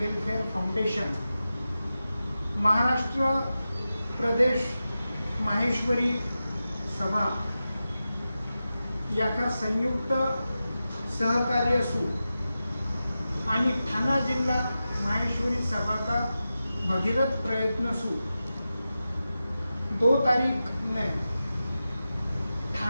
foundation Maharashtra Pradesh Maheshwari Sabha याका संयुक्त सहकार्य असू आणि ठाणा जिल्हा माहेश्वरी सभा का भगीरथ प्रयत्न सु 2 तारीख ने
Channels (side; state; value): both; inverted; correlation -0.93